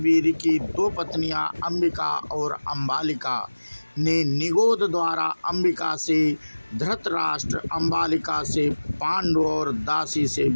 की 2 पत्नियां अंबिका और अंबालिका ने निगोद द्वारा अंबिका से धृतराष्ट्र, अंबालिका से पांडु और दासी से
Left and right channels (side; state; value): both; inverted; correlation -1.00